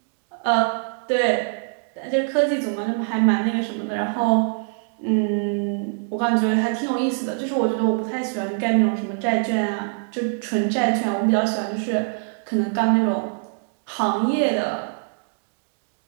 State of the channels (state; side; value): silent; left; 63 dB below the other